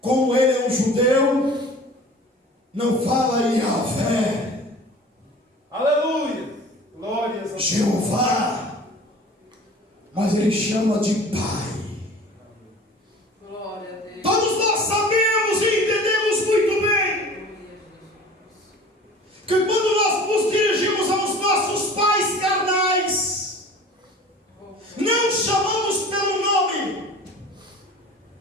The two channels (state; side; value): normal; both; correlation 0.43